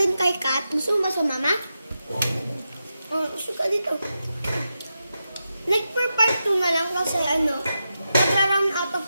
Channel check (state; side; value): inverted; both; correlation -0.89